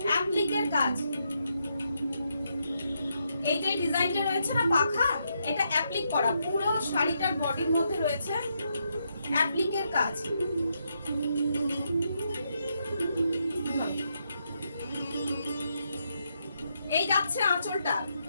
অ্যাপ্লিকের কাজ। এই যে ডিজাইনটা রয়েছে না পাখা, এটা অ্যাপ্লিক করা। পুরো শাড়িটার বডির মধ্যে রয়েছে অ্যাপ্লিকের কাজ। এই যাচ্ছে আঁচলটা,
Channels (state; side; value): inverted; both; correlation -0.80